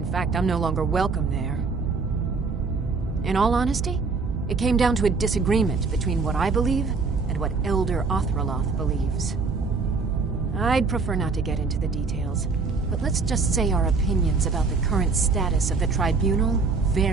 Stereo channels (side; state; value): left; quieter; 4.4 dB